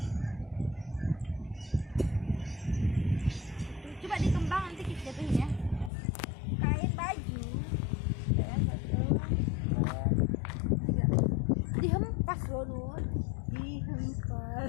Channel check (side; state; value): right; drops out; at 5.9 s